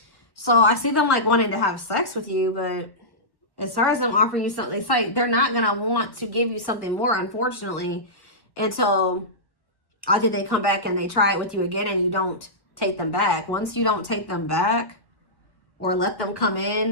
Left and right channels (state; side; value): late; right; 1.1 ms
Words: So I see them like wanting to have sex with you, but as far as them offering you something, it's like they're not going to want to give you something more, unfortunately, until either they come back and they try it with you again and you don't take them back. Once you don't take them back or let them come